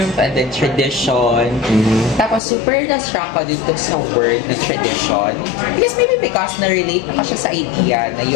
and the tradition. Tapos super na-struck ko dito sa word, the tradition. Because na-relate na siya sa idea na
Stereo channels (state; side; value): drops out; right; at 2.4 s